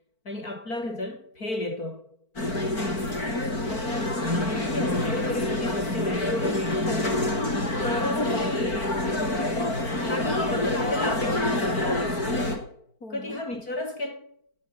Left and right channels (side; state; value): right; late; 4.5 ms